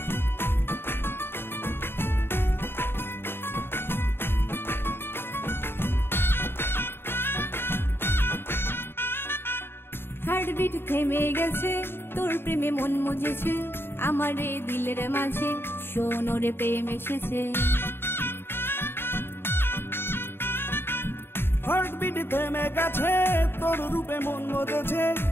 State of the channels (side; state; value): right; late; 0.11 ms